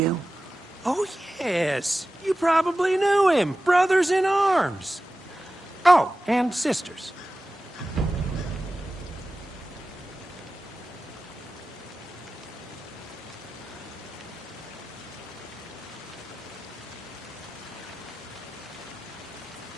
Oh, yes. You probably knew him. Brothers in arms. Oh, and sisters.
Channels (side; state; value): both; normal; correlation 0.94